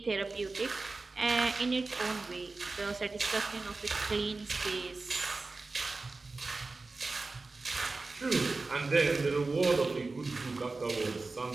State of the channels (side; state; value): left; quieter; 3.6 dB